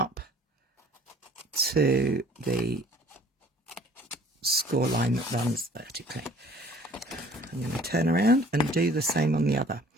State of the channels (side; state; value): both; normal; correlation 0.53